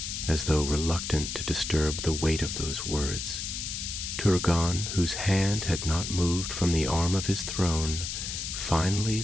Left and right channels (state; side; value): noise; left; hiss, 5 dB below the sound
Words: as though reluctant to disturb the weight of those words. Turgon, whose hand had not moved from the arm of his throne, finally